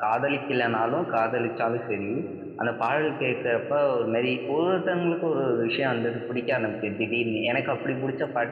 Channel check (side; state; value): both; identical; correlation 1.00